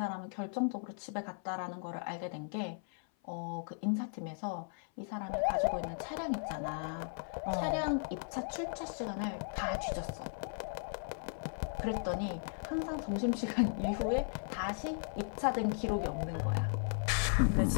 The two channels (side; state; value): right; silent; 53 dB below the other